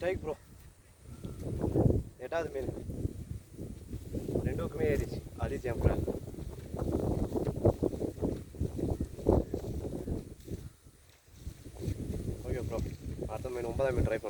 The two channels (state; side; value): identical; both; correlation 1.00